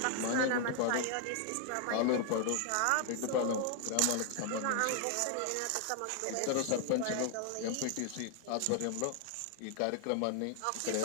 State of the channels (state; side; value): different; both; correlation 0.00